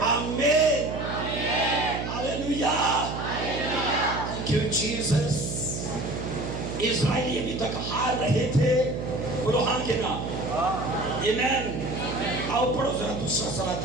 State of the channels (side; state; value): right; noise; hum, 5 dB below the sound